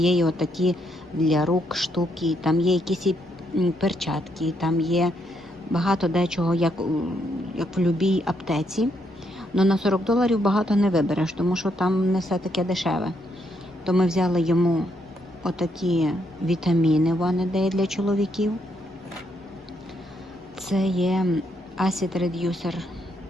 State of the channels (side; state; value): both; normal; correlation 0.76